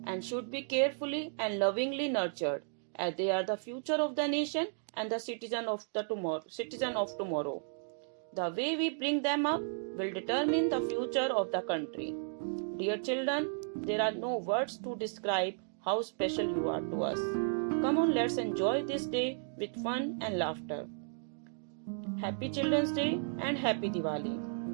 and should be carefully and lovingly nurtured, as they are the future of the nation and the citizen of tomorrow. The way we bring them up will determine the future of the country. Dear children, there are no words to describe how special you are to us. Come on, let's enjoy this day with fun and laughter. Happy Children's Day and Happy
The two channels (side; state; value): left; silent; digital silence